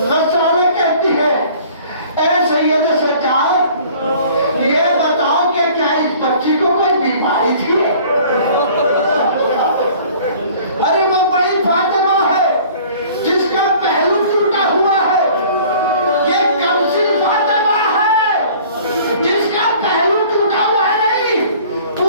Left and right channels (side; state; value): both; inverted; correlation -0.50